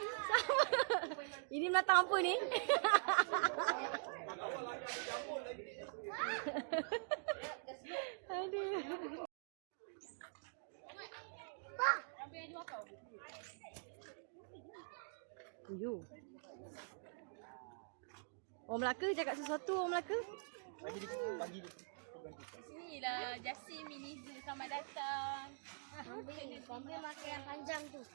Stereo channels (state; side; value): silent; left; digital silence